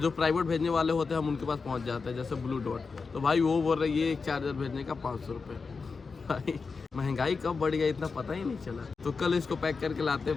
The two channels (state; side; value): quieter; right; 4.7 dB